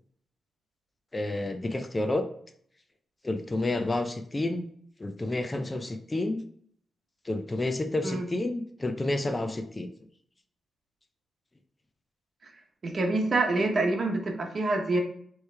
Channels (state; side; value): normal; both; correlation 0.87